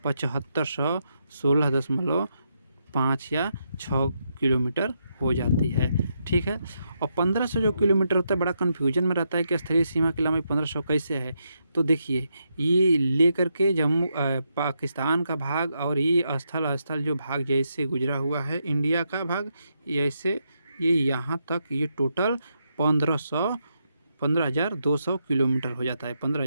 7516.5 या 6 किलोमीटर हो जाती है। ठीक है। और 1500 जो किलोमीटर होता है, बड़ा कन्फ्यूजन में रहता है कि स्थलीय सीमा की लंबाई 1500 कैसे है। तो देखिए, ये लेकर के जम्मू पाकिस्तान का भाग और ये स्थल जो भाग जैसे गुजरा हुआ है इंडिया का भाग, ऐसे ये यहाँ तक ये टोटल 15,200 किलोमीटर हो जाता है।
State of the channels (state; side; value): inverted; both; correlation -0.81